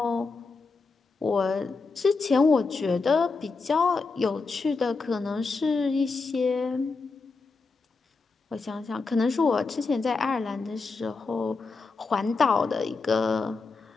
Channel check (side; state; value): right; quieter; 4.2 dB